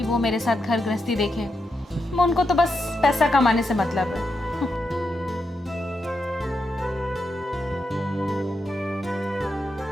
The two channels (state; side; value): normal; both; correlation 0.85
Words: वो मेरे साथ घर गृहस्थी देखे। मैं उनको तो बस पैसा कमाने से मतलब है।